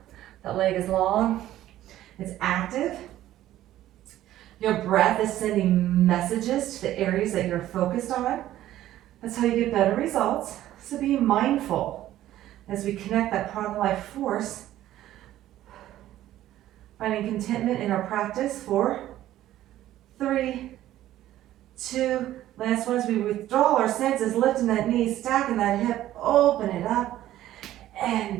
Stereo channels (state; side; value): quieter; left; 13.6 dB